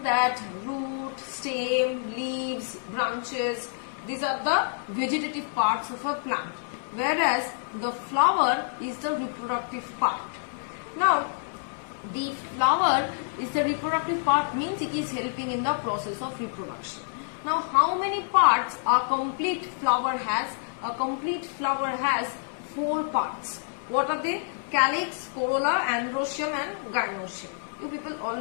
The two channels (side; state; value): right; silent; 60 dB below the other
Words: that root, stem, leaves, branches, these are the vegetative parts of a plant, whereas the flower is the reproductive part. Now the flower is the reproductive part, means it is helping in the process of reproduction. Now how many parts a complete flower has? A complete flower has 4 parts. What are they? Calyx, corolla, androecium and gynoecium. You people all